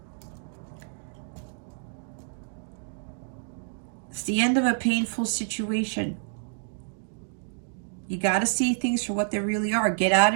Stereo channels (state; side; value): silent; left; 59 dB below the other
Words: It's the end of a painful situation. You got to see things for what they really are. Get out